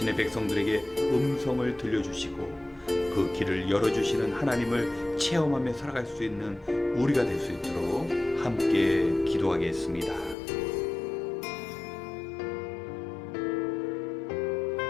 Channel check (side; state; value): right; drops out; at 10.4 s